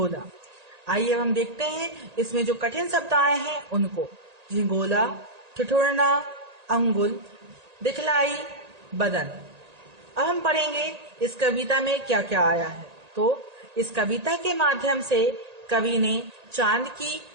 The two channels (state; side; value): late; left; 1.8 ms